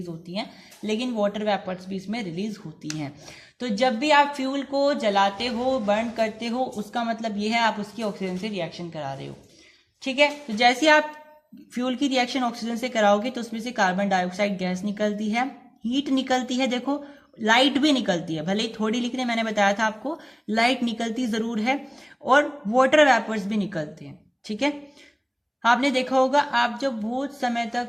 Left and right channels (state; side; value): identical; both; correlation 1.00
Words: होती हैं, लेकिन वाटर वेपर्स भी इसमें रिलीज होती हैं। तो जब भी आप फ्यूल को जलाते हो, बर्न करते हो, उसका मतलब ये है आप उसकी ऑक्सीजन से रिएक्शन करा रहे हो, ठीक है। तो जैसे आप फ्यूल की रिएक्शन ऑक्सीजन से कराओगे तो उसमें से कार्बन डाइऑक्साइड गैस निकलती है, हीट निकलती है, देखो लाइट भी निकलती है, भले ही थोड़ी लिखने मैंने बताया था आपको, लाइट निकलती जरूर है, और वाटर वेपर्स भी निकलते हैं, ठीक है। आपने देखा होगा, आप जब बहुत समय